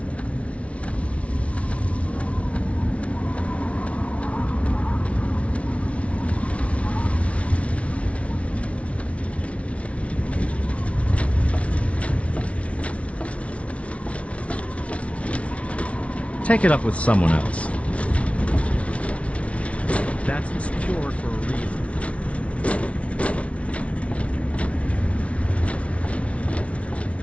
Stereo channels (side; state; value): right; late; 0.063 ms